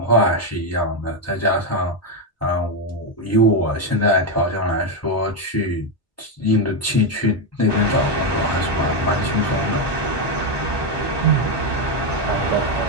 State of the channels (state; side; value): normal; both; correlation 0.06